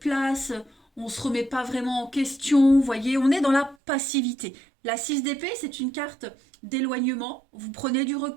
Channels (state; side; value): drops out; left; at 3.8 s